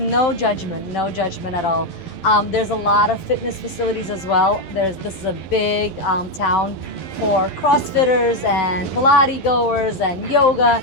judgment at all. There's a lot of fitness facilities as well. This is a big town for CrossFitters and Pilates goers and yoga.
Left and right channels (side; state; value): right; late; 12 ms